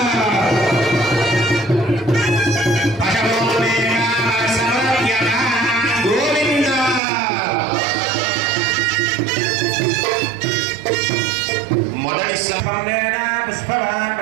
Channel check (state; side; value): drops out; left; at 7.0 s